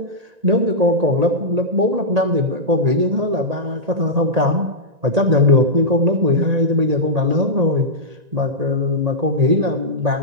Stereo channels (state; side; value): late; left; 1.9 ms